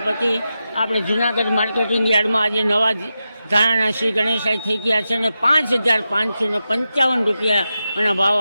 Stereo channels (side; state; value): both; inverted; correlation -0.90